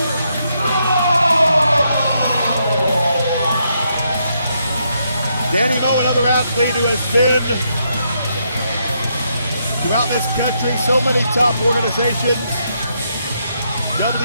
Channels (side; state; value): both; inverted; correlation -0.78